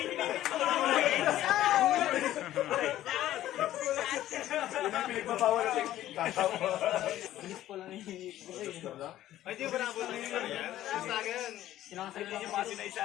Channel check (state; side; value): quieter; right; 13.5 dB